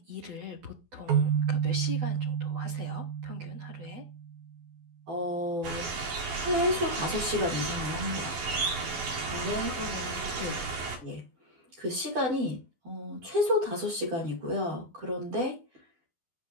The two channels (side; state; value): left; late; 12 ms